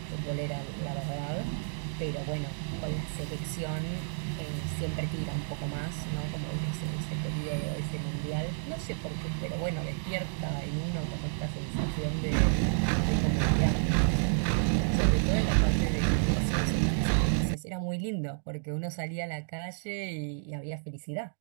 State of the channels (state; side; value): silent; left; digital silence